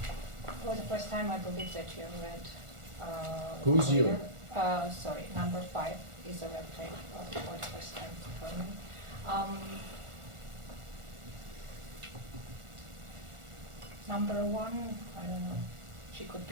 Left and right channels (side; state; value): left; late; 1.4 ms